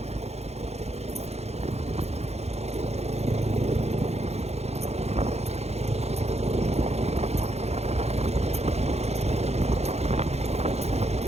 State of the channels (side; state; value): left; late; 0.31 ms